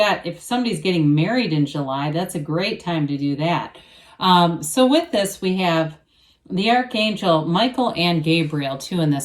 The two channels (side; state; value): both; identical; correlation 1.00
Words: if somebody's getting married in July, that's a great time to do that. So with this, we have the Archangel Michael and Gabriel too in